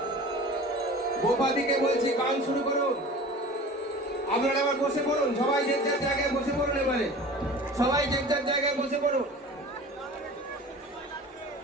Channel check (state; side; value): normal; both; correlation 0.39